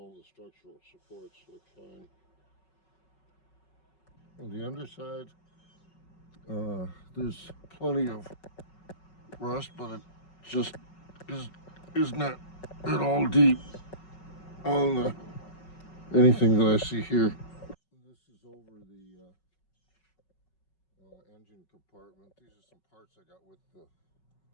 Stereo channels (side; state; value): right; late; 5.4 ms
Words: the structural supports look fine. On the underside, there's plenty of rust, but it just is not at all deep on anything that I see here. This is over the engine compartment. These are some parts I got with the